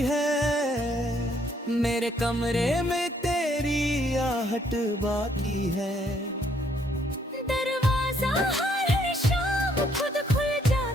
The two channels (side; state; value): both; normal; correlation 0.68